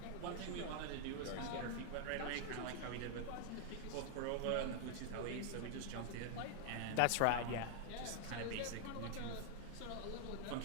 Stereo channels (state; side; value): different; both; correlation 0.00